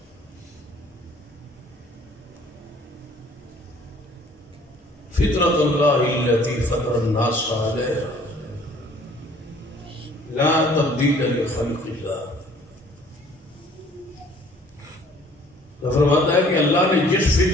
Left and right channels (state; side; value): normal; both; correlation 0.55